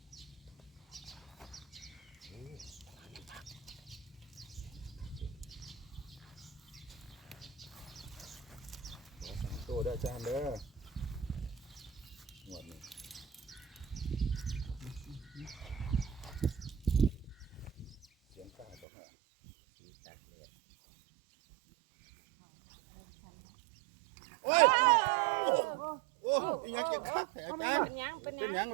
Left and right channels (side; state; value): left; drops out; at 18.9 s